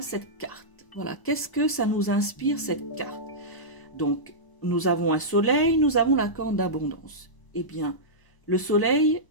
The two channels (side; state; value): right; late; 1.0 ms